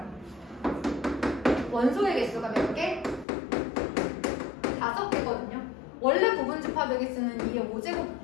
원소의 개수가 몇 개? 5개거든요. 원래 부분 집합의 개수는 2의 5제곱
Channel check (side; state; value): right; drops out; at 3.2 s